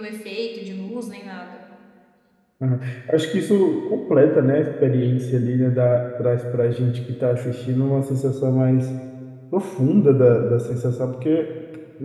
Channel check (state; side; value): identical; both; correlation 1.00